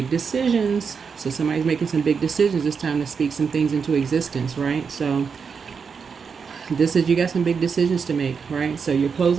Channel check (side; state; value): left; quieter; 5.9 dB